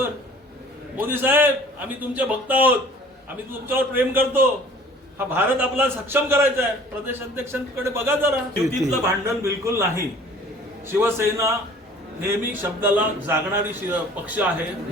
मोदी साहेब, आम्ही तुमचे भक्त आहोत, आम्ही तुमच्यावर प्रेम करतो, हा भारत आपला सक्षम करायचा आहे. प्रदेशाध्यक्षांकडे बघा जरा. युतीतलं भांडण बिलकुल नाही. शिवसेना नेहमी शब्दाला जागणारी पक्ष आहे.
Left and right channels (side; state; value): both; normal; correlation 0.49